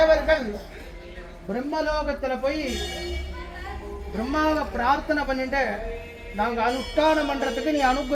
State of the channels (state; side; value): identical; both; correlation 1.00